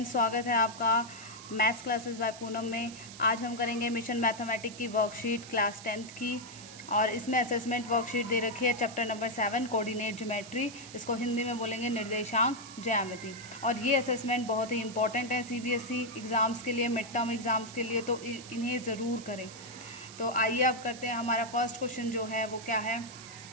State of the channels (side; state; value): right; noise; hiss, 15 dB below the sound